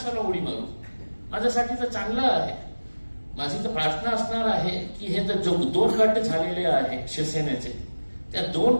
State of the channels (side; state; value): both; inverted; correlation -1.00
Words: उडी मारू, माझ्यासाठी तर चांगलं आहे। माझी तर प्रार्थना असणार आहे की हे तर जो 2 गट झालेले आहे शिवसेनेचे, त्या 2